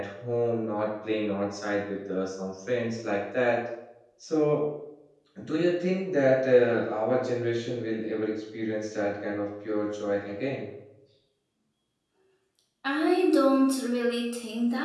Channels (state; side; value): identical; both; correlation 1.00